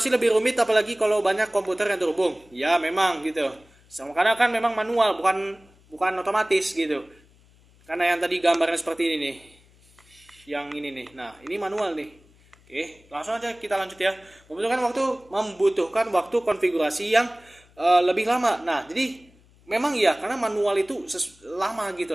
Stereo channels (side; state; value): left; noise; hum, 29 dB below the sound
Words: lebih rumit apalagi kalau banyak komputer yang terhubung. Ya, memang gitu. Karena kan memang manual, bukan otomatis gitu. Karena yang tadi gambarnya seperti ini nih. Yang ini nih. Nah, ini manual nih. Oke, langsung aja kita lanjut ya. Membutuhkan waktu konfigurasi yang lebih lama. Nah, jadi memang iya karena manual itu lama